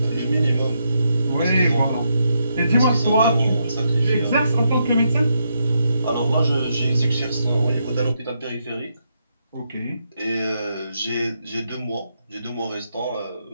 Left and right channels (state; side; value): inverted; both; correlation -0.80